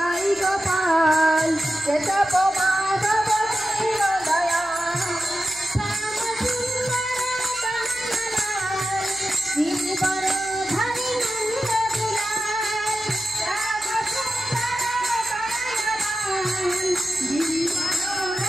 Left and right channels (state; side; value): noise; left; hum, 24 dB below the sound